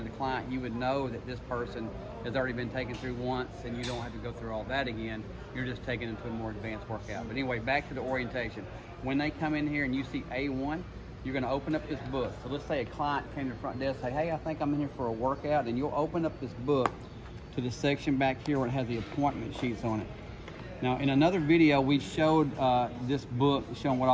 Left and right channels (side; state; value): both; identical; correlation 1.00